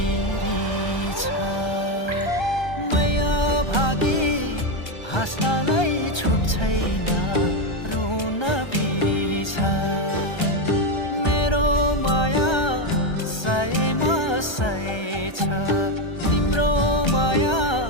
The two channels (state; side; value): late; right; 1.3 ms